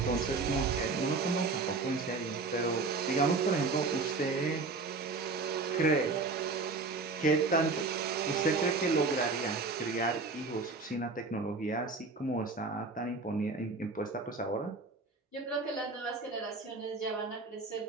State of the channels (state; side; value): quieter; left; 3.9 dB